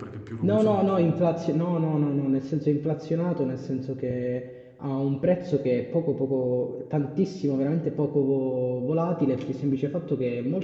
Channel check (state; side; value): identical; both; correlation 1.00